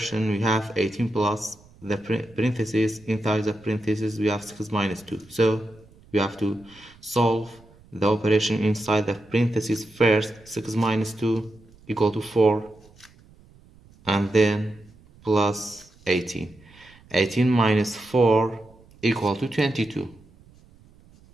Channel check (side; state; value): right; noise; rumble, 26 dB below the sound